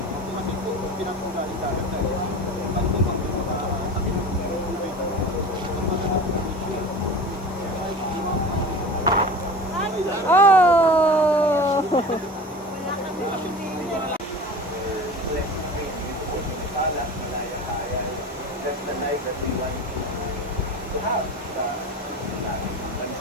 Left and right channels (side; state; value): both; normal; correlation 0.34